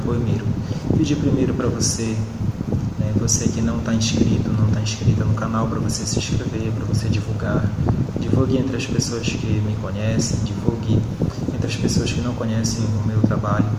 Poemeiro. Pedir primeiro para você, você que não está inscrito, não está inscrita no canal, para você se inscrever, para você divulgar. Divulgue entre as pessoas que me conhecem, divulgue entre as pessoas que não conhecem o meu trabalho.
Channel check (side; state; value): both; identical; correlation 1.00